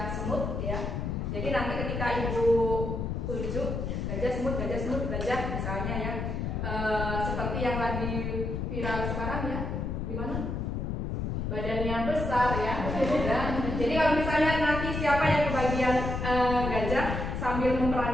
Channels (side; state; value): left; noise; rumble, 2 dB below the sound